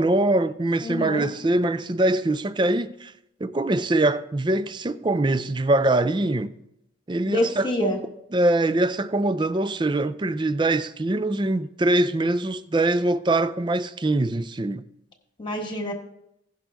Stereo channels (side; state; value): both; normal; correlation 0.62